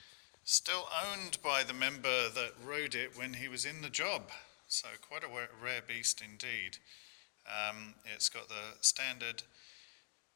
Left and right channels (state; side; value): silent; right; digital silence